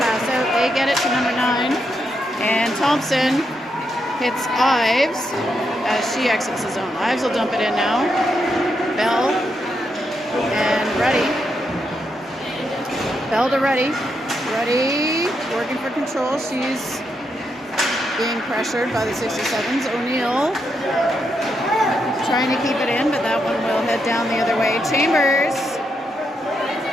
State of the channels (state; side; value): normal; both; correlation 0.81